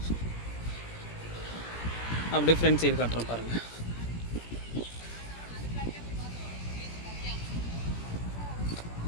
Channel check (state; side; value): late; right; 17 ms